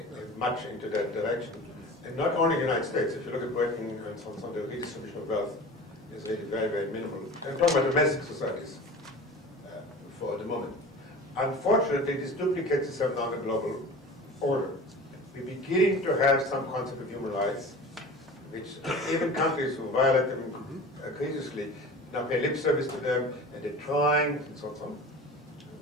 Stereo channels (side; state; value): both; normal; correlation 0.37